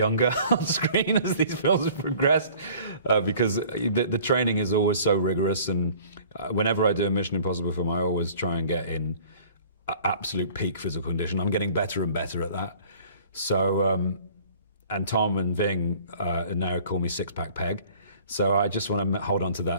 on screen as these films have progressed, because the training is always so rigorous, and whenever I do a Mission Impossible film, I always try and get in absolute peak physical condition. I'm getting better and better at that. So, and Tom and Ving now call me Six-Pack Peg. So I just want to hold on to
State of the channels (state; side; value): inverted; both; correlation -0.51